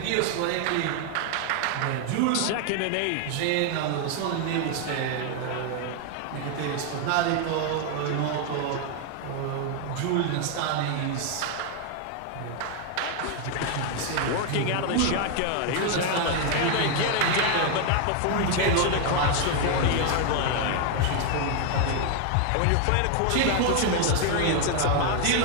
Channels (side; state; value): both; different; correlation 0.00